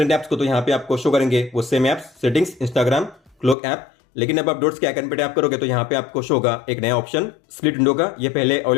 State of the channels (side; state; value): right; drops out; at 3.6 s